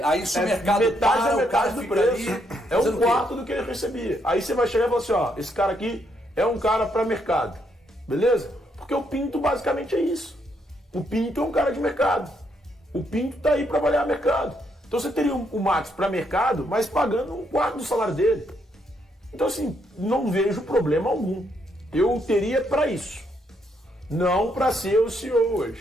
Aí se o mercado metade para, da o metade cara do fica preço. ali É fazendo um o quê? quarto do que ele recebia. Aí você vai chegar e falar assim, ó, esse cara aqui é um cara para mercado. Beleza? Porque o Pinto basicamente é isso. O Pinto é um cara de mercado. O Pinto tá aí para avaliar mercado. Então você teria o Max para mercado, mas pagando um quarto do salário dele. Então assim, não vejo problema algum. Eu teria para isso. Não para ser o CEO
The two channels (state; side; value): normal; both; correlation 0.75